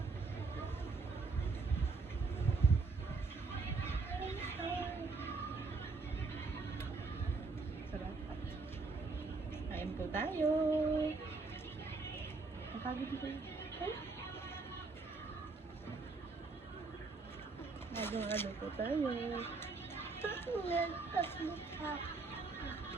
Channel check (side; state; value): left; quieter; 4.1 dB